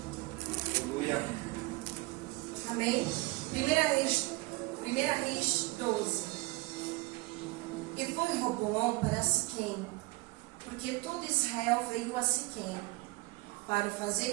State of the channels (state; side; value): quieter; left; 22.7 dB